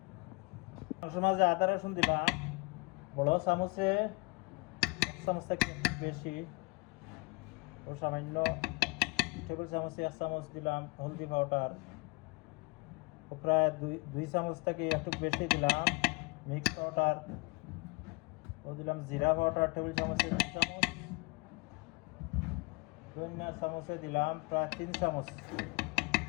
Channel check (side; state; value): right; quieter; 28.7 dB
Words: মাঝে আদা রসুন দিলাম বড় চামচে, চামচ থেকে বেশি ও সামান্য টেবিল চামচে 1 চামচ দিলাম হলদি পাউডার, ও প্রায় দুই চামচ থেকে একটু বেশি দিলাম মিক্স পাউডার, ও দিলাম জিরা পাউডার টেবিল চামচে 2 চামচ, ধনিয়া চামচে দিলাম প্রায় 3 চামচ